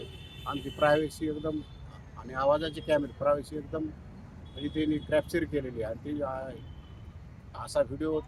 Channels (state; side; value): identical; both; correlation 1.00